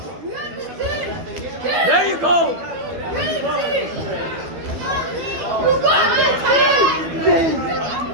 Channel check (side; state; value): left; late; 12 ms